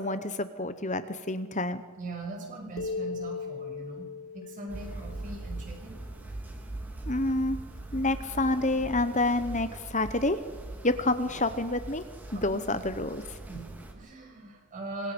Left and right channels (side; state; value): both; normal; correlation 0.27